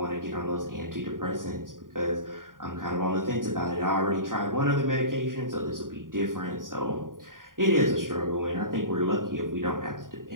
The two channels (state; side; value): late; left; 0.90 ms